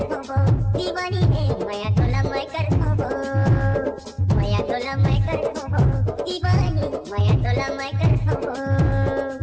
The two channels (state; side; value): identical; both; correlation 1.00